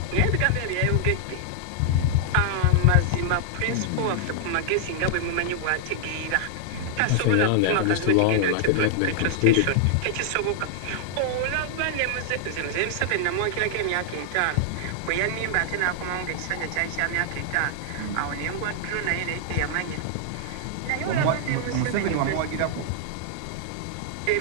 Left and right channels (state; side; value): different; both; correlation 0.00